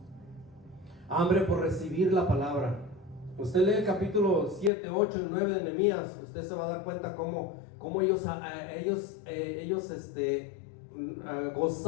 hambre por recibir la palabra. Usted lee el capítulo 7, 8 y 9 de Nehemías, usted se va a dar cuenta cómo ellos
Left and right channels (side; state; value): right; drops out; at 4.7 s